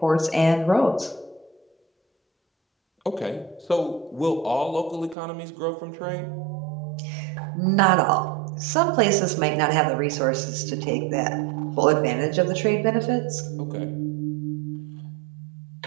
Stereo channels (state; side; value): drops out; left; at 5.2 s